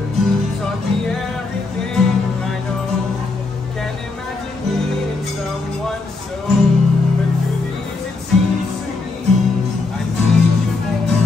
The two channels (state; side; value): quieter; right; 3.7 dB